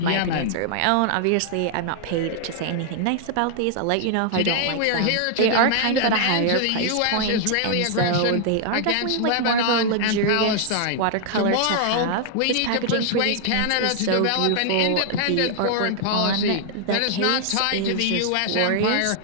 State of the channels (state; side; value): different; both; correlation 0.00